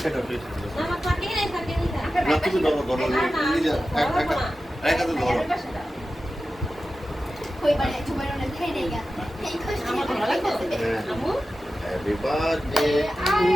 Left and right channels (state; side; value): normal; both; correlation 0.94